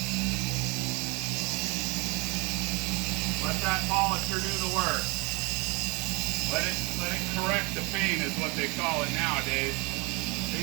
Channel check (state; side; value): quieter; left; 28.5 dB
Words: let that polisher do the work. Let it correct the paint is what they call it nowadays.